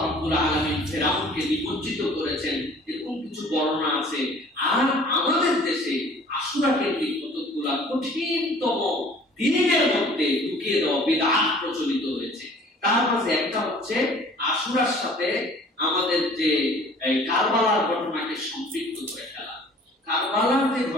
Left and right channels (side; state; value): both; normal; correlation 0.51